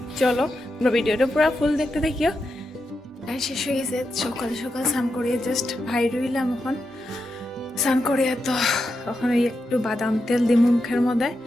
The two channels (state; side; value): normal; both; correlation 0.87